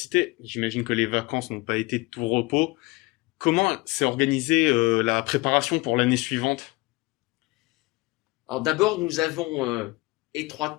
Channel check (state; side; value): quieter; right; 23.2 dB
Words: j'imagine que les vacances n'ont pas été de tout repos. Comment s'est organisée la préparation pour l'année suivante? Alors d'abord, nous avons